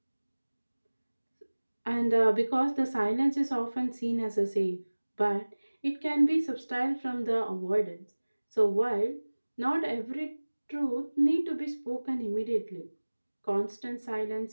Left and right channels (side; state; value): both; inverted; correlation -1.00